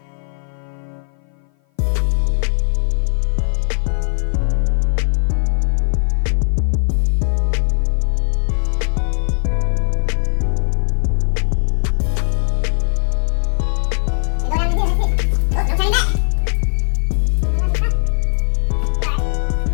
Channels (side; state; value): right; silent; 56 dB below the other